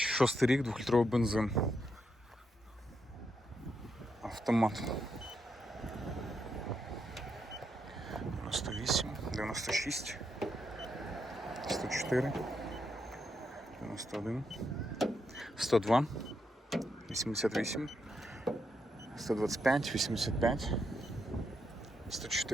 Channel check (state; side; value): normal; both; correlation 0.81